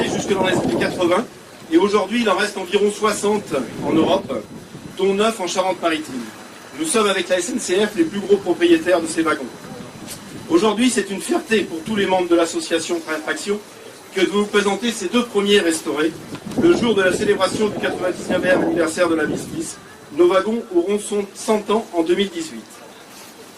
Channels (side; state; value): both; identical; correlation 1.00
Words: jusque dans les années 80, et aujourd'hui il en reste environ 60 en Europe, dont 9 en Charente-Maritime. Nous sommes avec la SNCF les plus gros propriétaires de ces wagons. Aujourd'hui, c'est une fierté pour tous les membres de l'association Train et Traction que de vous présenter ces deux premiers restaurés. Le jour de la célébration du 99e anniversaire de la Miss, nos wagons auront 100 ans en 2018.